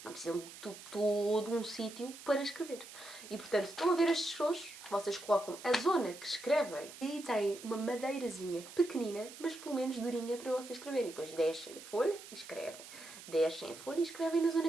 Não precisam de todo um sítio para escrever. E, portanto, estão a ver estes tojos? Vocês colocam a zona que escrevem e têm uma madeirazinha pequenina, mas pelo menos durinha para vocês escreverem. Depois descem a folha e escrevem. Descem a folha e escrevem na zona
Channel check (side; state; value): right; noise; hiss, 15 dB below the sound